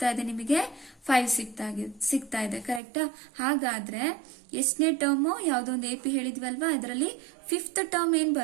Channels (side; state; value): left; drops out; at 2.8 s